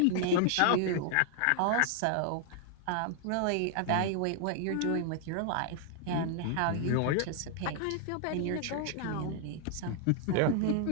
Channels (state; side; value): different; both; correlation 0.00